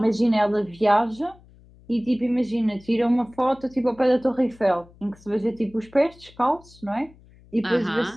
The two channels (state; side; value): noise; left; hum, 26 dB below the sound